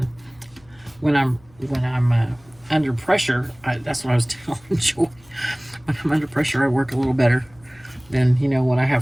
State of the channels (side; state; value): left; noise; hum, 29 dB below the sound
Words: when I'm under pressure, that's what I was telling Joy. When I'm under pressure, I work a little better than, you know, when I